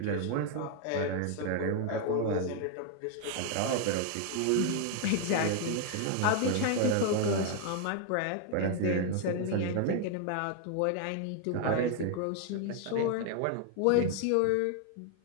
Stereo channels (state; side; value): different; both; correlation 0.00